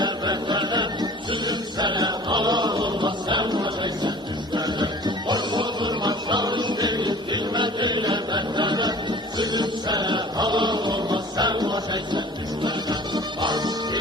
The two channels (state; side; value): normal; both; correlation 0.45